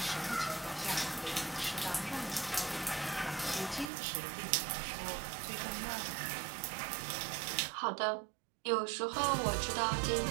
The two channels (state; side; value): drops out; left; at 3.9 s